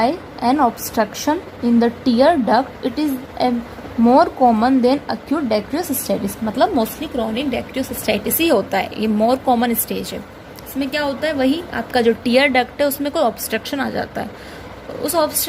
an obstruction in the tear duct, it is more common than acute dacryocystitis, मतलब मोस्टली क्रोनिक डेक्रियोसिस्टाइटिस ही होता है, ये मोर कॉमन स्टेज है। इसमें क्या होता है, वही आपका जो टीयर डक्ट है उसमें कोई ऑब्स्ट्रक्शन आ जाता है, उस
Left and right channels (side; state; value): both; identical; correlation 1.00